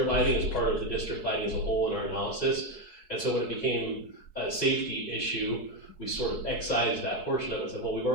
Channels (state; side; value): late; right; 4.7 ms